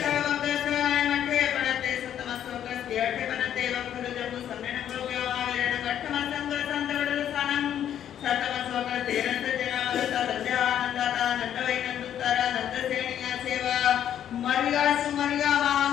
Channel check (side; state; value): right; quieter; 10.2 dB